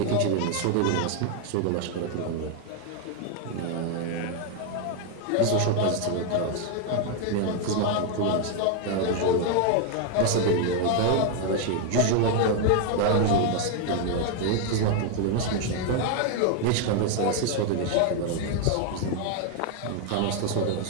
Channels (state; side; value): different; both; correlation 0.01